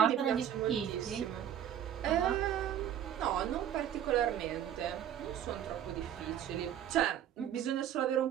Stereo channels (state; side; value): quieter; left; 10.1 dB